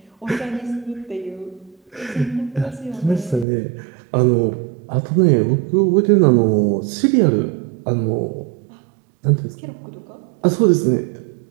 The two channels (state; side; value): drops out; left; at 3.5 s